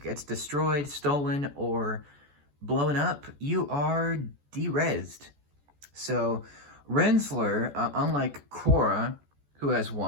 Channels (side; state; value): left; late; 14 ms